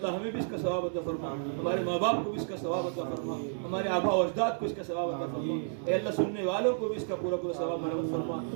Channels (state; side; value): silent; left; digital silence